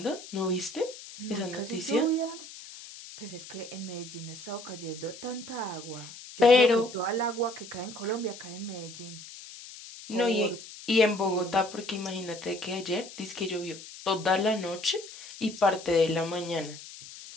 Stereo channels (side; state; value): left; noise; hiss, 15 dB below the sound